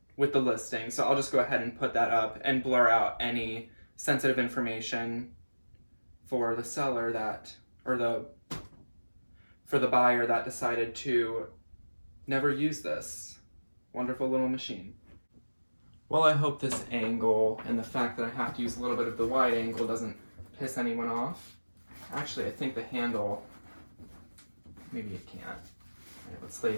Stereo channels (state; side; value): inverted; both; correlation -1.00